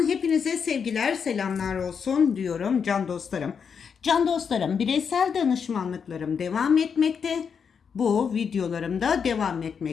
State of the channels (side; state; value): right; quieter; 6.6 dB